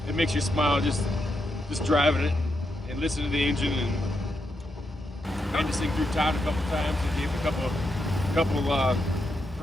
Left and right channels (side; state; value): both; normal; correlation 0.83